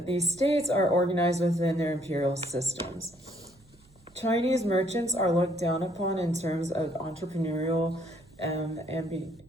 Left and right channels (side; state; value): right; noise; hum, 28 dB below the sound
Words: these states are organized within their imperial systems. Chinese merchants are looked down upon in terms of entrepreneurial